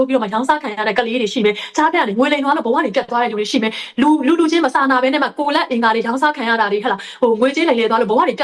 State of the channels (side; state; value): both; identical; correlation 1.00